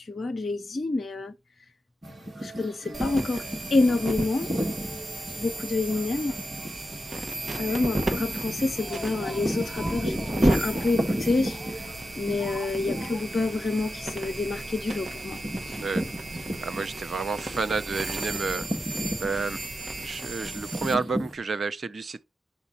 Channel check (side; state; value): both; normal; correlation 0.89